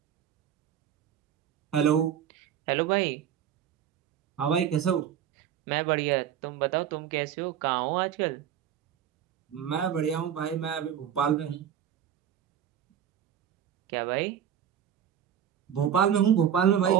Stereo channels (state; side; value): quieter; left; 9.5 dB